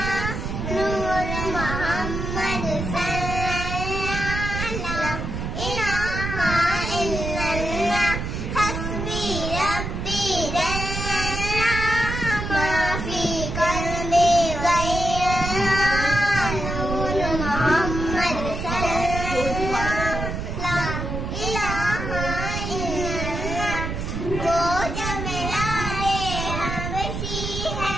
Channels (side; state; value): right; noise; rumble, 4 dB below the sound